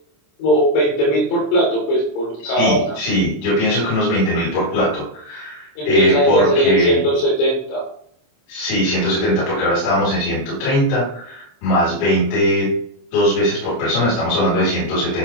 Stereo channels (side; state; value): right; late; 27 ms